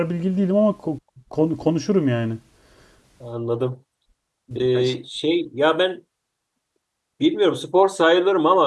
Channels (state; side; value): identical; both; correlation 1.00